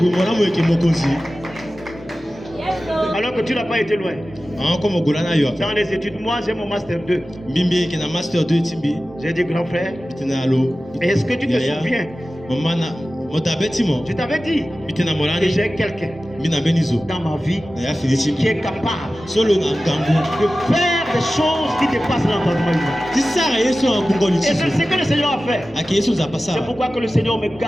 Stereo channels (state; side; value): normal; both; correlation 0.95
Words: Alors que tu n'as pas été loin. Dans les études, moi j'ai mon master 2. J'ai dit grand frère, est-ce que tu te souviens? Je t'avais dit que j'ai quelqu'un dans ma vie qui est capable de faire des choses qui dépassent l'entendement humain. Et c'est ce que le Seigneur a fait. C'est pourquoi que le Seigneur me